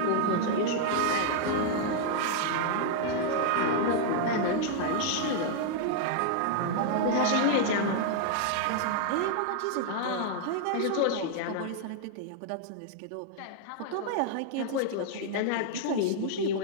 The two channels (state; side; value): different; both; correlation -0.01